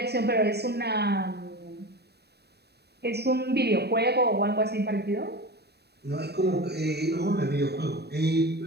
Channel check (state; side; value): late; left; 0.47 ms